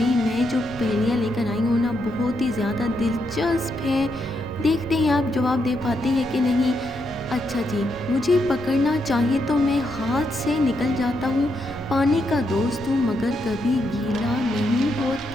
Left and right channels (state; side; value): normal; both; correlation 0.80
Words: मैं जो पहेलियाँ लेकर आई हूँ ना, बहुत ही ज़्यादा दिलचस्प है। देखते हैं आप जवाब दे पाते हैं कि नहीं। अच्छा जी, मुझे पकड़ना चाहे तो मैं हाथ से निकल जाता हूँ। पानी का दोस्त हूँ मगर कभी गीला नहीं